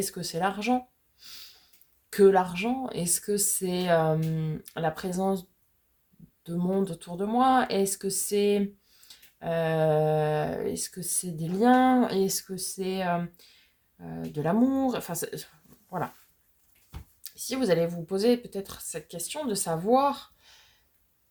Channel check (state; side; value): identical; both; correlation 1.00